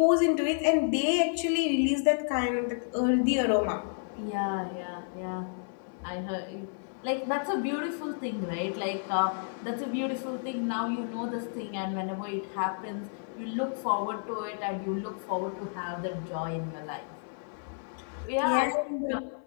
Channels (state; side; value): silent; right; 57 dB below the other